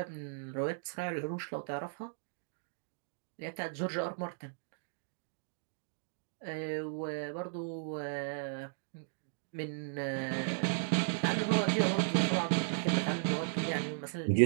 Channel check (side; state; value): left; silent; digital silence